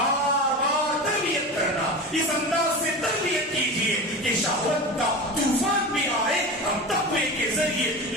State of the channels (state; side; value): normal; both; correlation 0.28